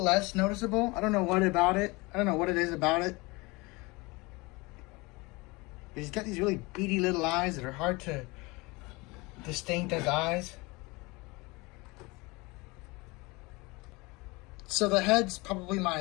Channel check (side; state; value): right; quieter; 24.7 dB